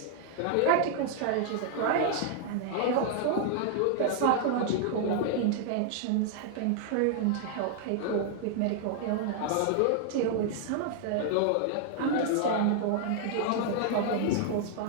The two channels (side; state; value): both; different; correlation 0.00